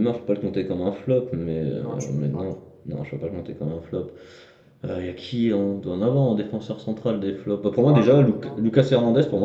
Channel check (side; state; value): both; identical; correlation 1.00